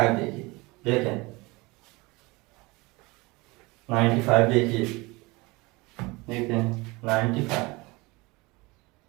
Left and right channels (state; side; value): quieter; left; 24.0 dB